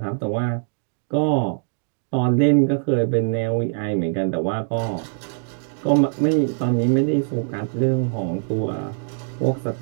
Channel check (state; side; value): silent; left; digital silence